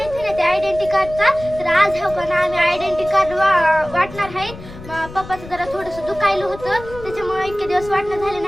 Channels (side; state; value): left; noise; rumble, 15 dB below the sound